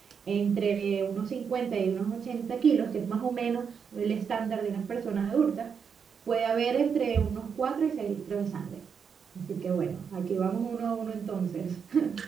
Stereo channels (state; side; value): quieter; left; 6.6 dB